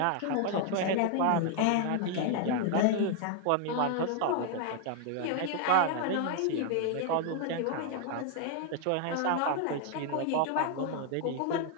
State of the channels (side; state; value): both; different; correlation 0.00